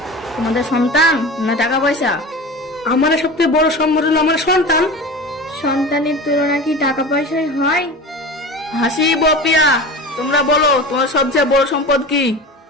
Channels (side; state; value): both; normal; correlation 0.32